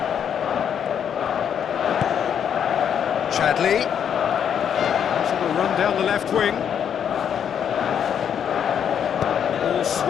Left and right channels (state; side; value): quieter; right; 8.4 dB